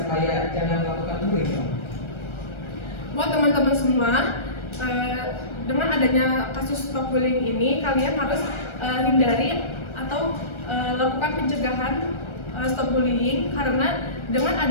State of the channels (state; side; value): late; right; 1.3 ms